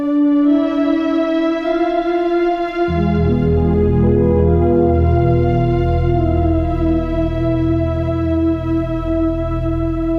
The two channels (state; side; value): identical; both; correlation 1.00